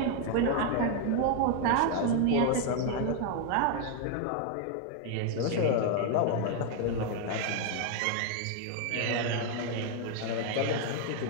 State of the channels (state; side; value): different; both; correlation 0.00